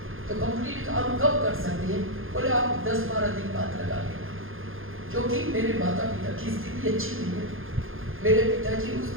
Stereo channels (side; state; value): left; late; 0.60 ms